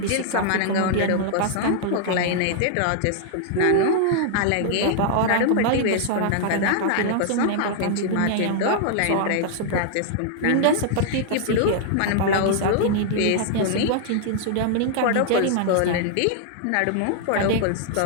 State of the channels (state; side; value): different; both; correlation -0.01